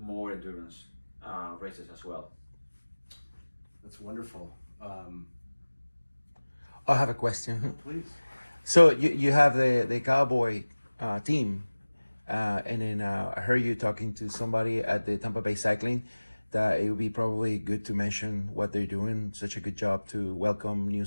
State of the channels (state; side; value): inverted; both; correlation -1.00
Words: endurance races as well. That's wonderful. I have a question. Please. So you have the Cowboy team, and then I heard you talking to somebody at the Tampa Bay Cycling that it would be probably good to mention what they're doing, such a good job to welcome new